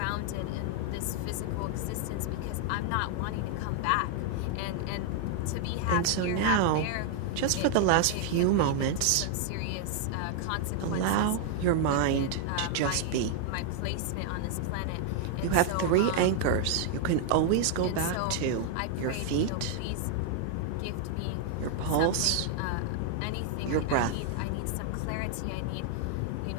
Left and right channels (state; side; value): different; both; correlation 0.00